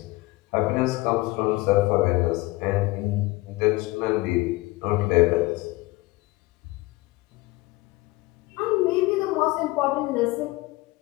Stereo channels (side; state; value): right; quieter; 21.0 dB